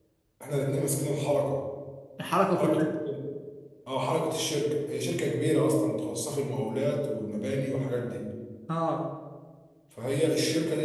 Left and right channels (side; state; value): both; identical; correlation 1.00